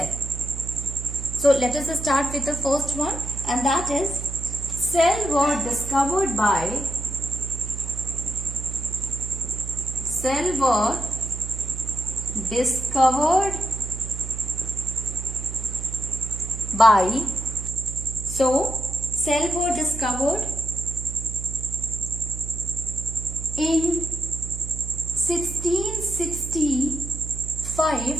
So let us start with the first one, and that is cell were discovered by in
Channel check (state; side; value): noise; right; hum, 8 dB below the sound